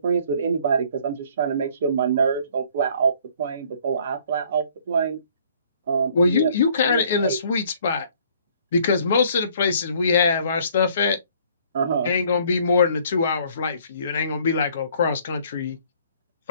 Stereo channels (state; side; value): inverted; both; correlation -0.59